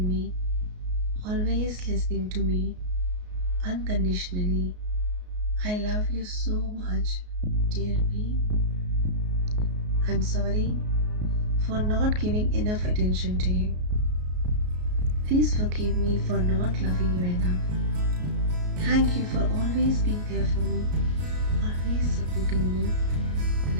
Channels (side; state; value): left; late; 33 ms